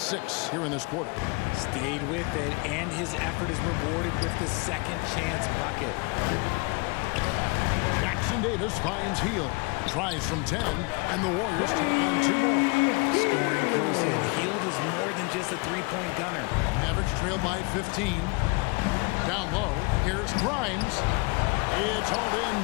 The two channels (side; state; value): right; quieter; 28.7 dB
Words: here in this quarter. Stayed with it, and his effort is rewarded with the second chance bucket. Jackson Davis finds Hield. Tries from 10, and the Warriors take on 2 more. Scoring close in. Hield is more than just a three-point gunner. Mavericks trail by 15. Down low, here's Grimes. It's hauled in